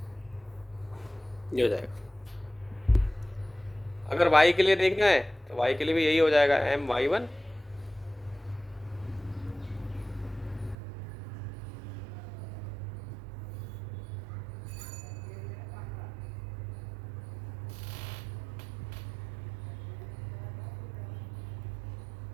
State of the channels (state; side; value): drops out; left; at 10.8 s